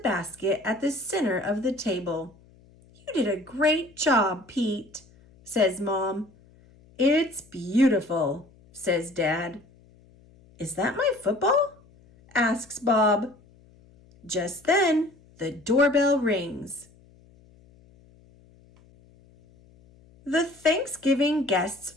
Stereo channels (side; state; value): left; noise; hum, 28 dB below the sound